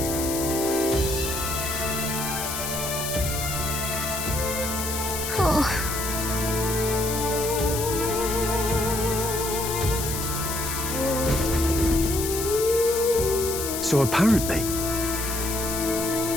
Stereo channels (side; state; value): left; noise; hiss, 4 dB below the sound